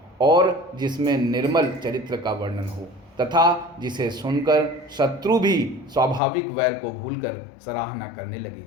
और जिसमें निर्मल चरित्र का वर्णन हो, तथा जिसे सुनकर शत्रु भी स्वाभाविक वैर को भूलकर सराहना करने लगे।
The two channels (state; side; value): drops out; right; at 6.2 s